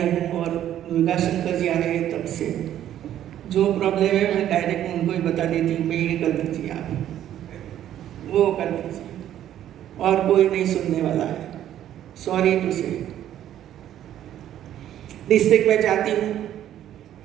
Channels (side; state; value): left; quieter; 11.5 dB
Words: हूँ और दुर्गा शंकर जी आ रहे हैं तब से, जो प्रॉब्लम है मैं डायरेक्ट उनको ही बता देती हूँ, मैं ये कर दीजिए, आप वो कर दीजिए, और कोई नहीं सुनने वाला है। सॉरी टू से। डिस्ट्रिक्ट में जाती हूँ,